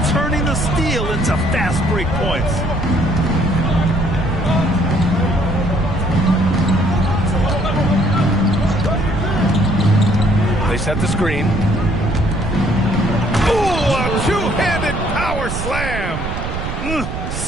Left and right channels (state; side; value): noise; right; rumble, 5 dB below the sound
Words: turning the steel into fast break points. They set the screen. Ooh, a two-handed power slam.